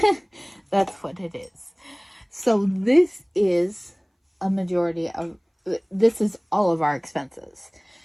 That's what it is. So this is a majority of, this is all of our expenses.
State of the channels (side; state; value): both; identical; correlation 1.00